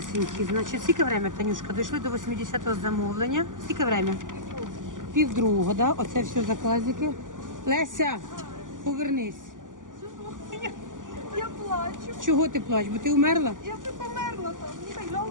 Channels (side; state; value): left; late; 0.88 ms